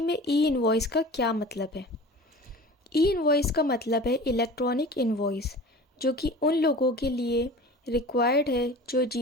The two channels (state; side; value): normal; both; correlation 0.39